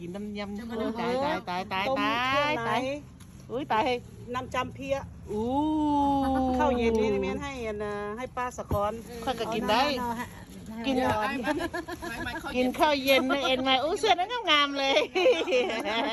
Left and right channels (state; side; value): identical; both; correlation 1.00